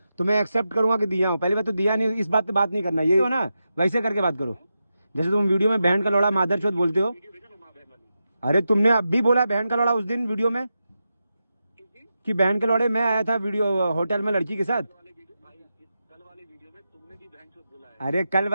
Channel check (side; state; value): both; inverted; correlation -0.89